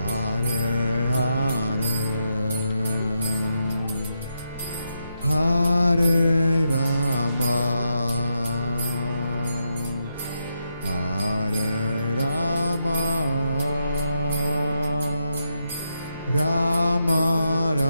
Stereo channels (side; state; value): both; inverted; correlation -0.83